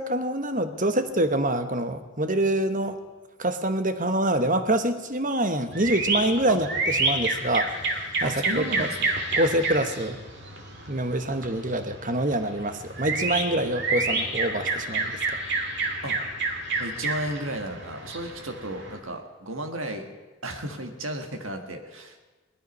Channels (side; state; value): both; normal; correlation 0.14